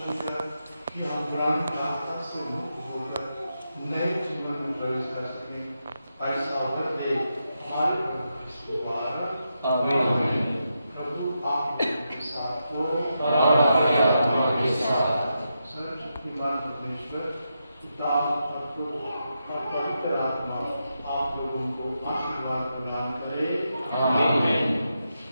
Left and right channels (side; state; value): both; inverted; correlation -0.86